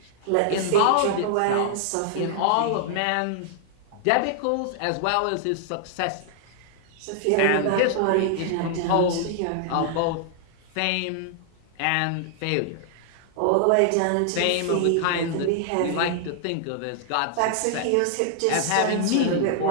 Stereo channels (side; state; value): both; different; correlation -0.01